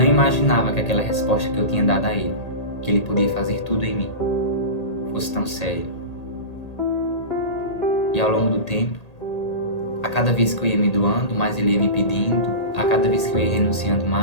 imaginava que aquela resposta que eu tinha dado a ele, que ele podia fazer tudo em mim, fosse tão sério. E ao longo do tempo, a cada vez que eu ia me doando, mais ele ia me pedindo. A cada vez que eu ia renunciando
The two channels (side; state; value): right; late; 1.8 ms